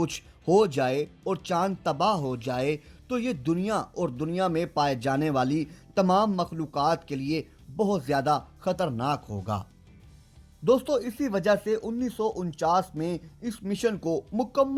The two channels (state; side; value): identical; both; correlation 1.00